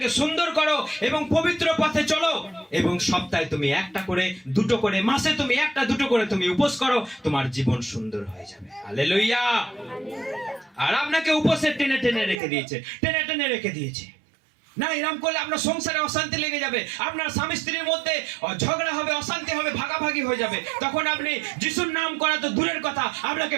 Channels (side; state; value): left; drops out; at 12.4 s